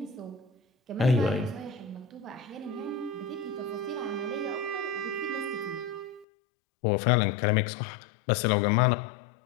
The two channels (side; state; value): right; drops out; at 6.2 s